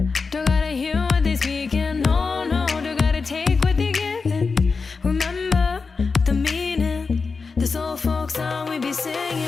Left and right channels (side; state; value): right; quieter; 4.6 dB